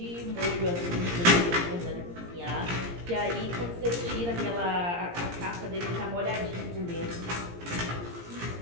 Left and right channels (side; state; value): left; late; 17 ms